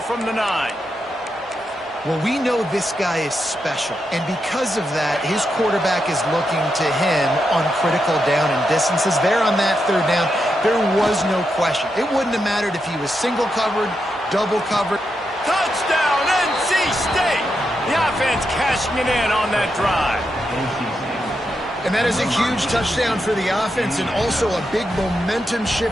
from the 9. Well, we know this guy is special, and because of that, his quarterback is looking to him on critical down and distances. There on that 3rd down, there was no question. It wouldn't have mattered if he was single covered, double covered. Touchdown, NC State! The offense cashing it in on that drive. And that is a huge touchdown for the offense and also a big momentum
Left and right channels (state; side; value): normal; both; correlation 0.85